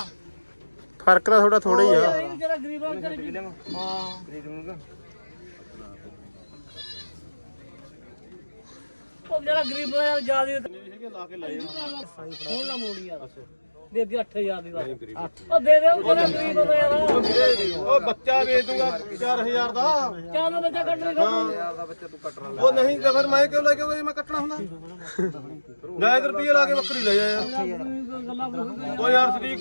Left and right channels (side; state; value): both; inverted; correlation -1.00